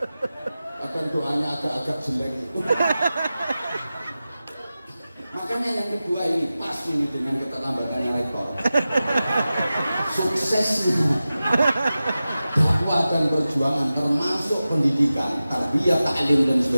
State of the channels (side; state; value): both; inverted; correlation -0.95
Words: Akan doanya agak-agak jelek itu. Makanya yang kedua ini pas ini dengan keterlambatannya rektor. Suksesnya dakwah dan perjuangan termasuk pendidikan, tarbiyah, ta'lim dan